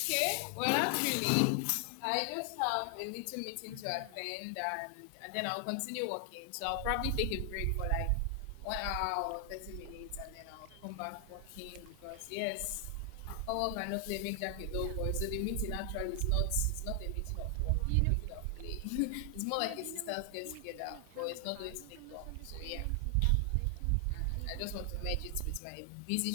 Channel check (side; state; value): both; different; correlation 0.00